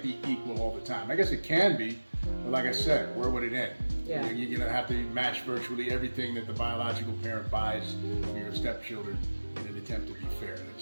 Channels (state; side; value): inverted; both; correlation -1.00